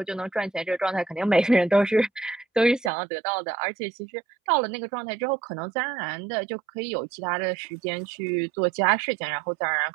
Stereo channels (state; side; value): drops out; left; at 2.9 s